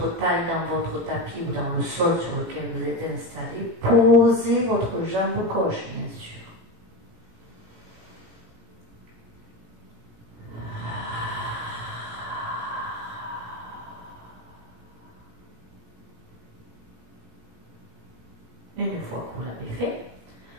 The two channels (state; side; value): late; left; 18 ms